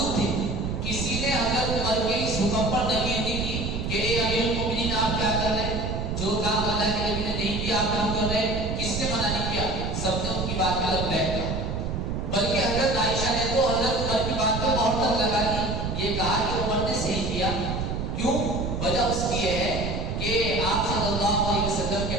تھے۔ کسی نے حضرت عمر کے اس حکم پر نفی نہیں کی کہ اے امیر المومنین آپ کیا کر رہے ہیں، جو کام اللہ کے نبی نے نہیں کیا آپ کیوں کر رہے ہیں، کس نے منع نہیں کیا، سب نے ان کی بات پہ لبیک کہا، بلکہ حضرت عائشہ نے تو حضرت عمر کی بات پہ مہر تک لگا دی، یہ کہا کہ عمر نے صحیح کیا۔ کیوں؟ وجہ اس کی یہ ہے کہ آپ صلی اللہ علیہ وسلم کے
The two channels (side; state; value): right; noise; rumble, 3 dB below the sound